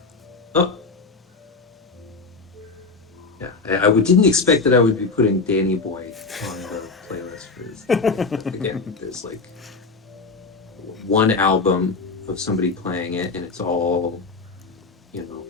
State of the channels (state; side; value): quieter; right; 4.1 dB